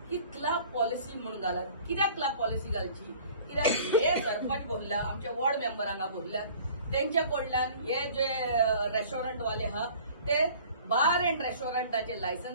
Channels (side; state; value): both; inverted; correlation -0.48